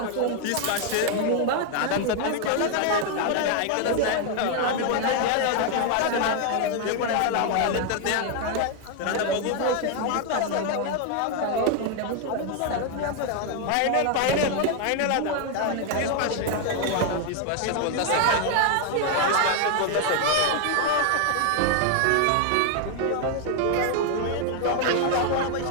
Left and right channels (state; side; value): different; both; correlation 0.00